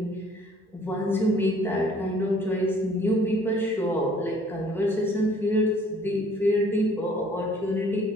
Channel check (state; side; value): normal; both; correlation 0.57